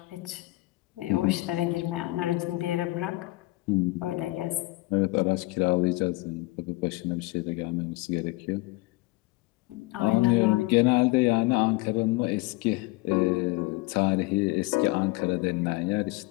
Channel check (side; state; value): right; quieter; 21.5 dB